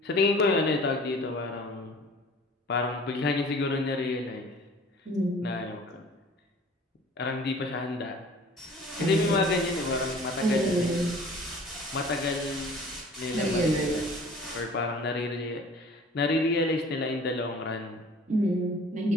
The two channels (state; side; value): normal; both; correlation 0.47